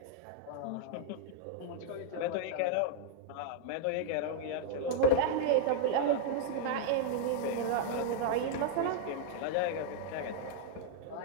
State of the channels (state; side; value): different; both; correlation -0.01